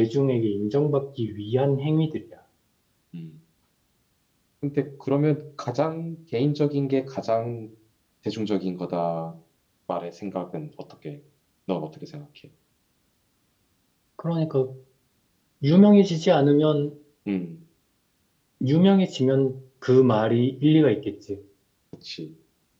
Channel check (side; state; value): both; identical; correlation 1.00